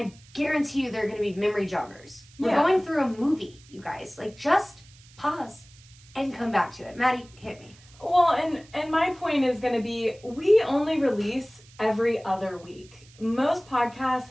guarantee you there are going to be memory joggers. We're going through a movie, you guys. Like, just pause and come back to it. Maddie, hit me. Well, and my point is going to be, we only release every other week. Most podcasts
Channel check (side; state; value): right; noise; hiss, 25 dB below the sound